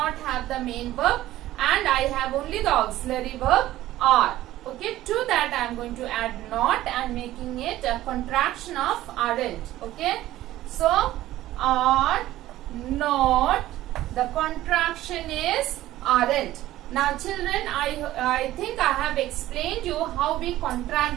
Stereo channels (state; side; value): quieter; left; 15.0 dB